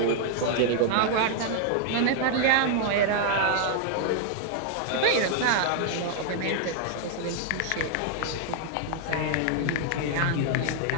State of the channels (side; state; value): both; different; correlation -0.01